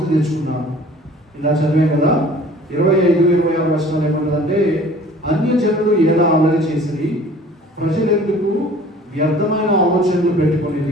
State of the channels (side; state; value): both; normal; correlation 0.49